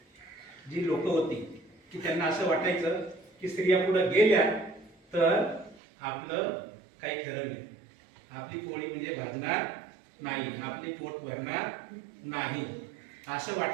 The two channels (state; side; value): drops out; left; at 5.8 s